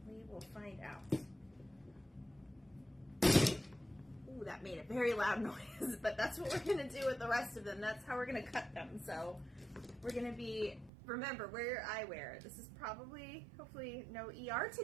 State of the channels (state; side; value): drops out; left; at 10.9 s